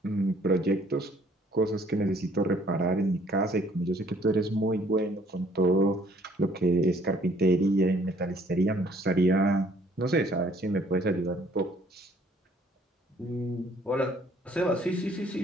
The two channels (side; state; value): both; normal; correlation 0.61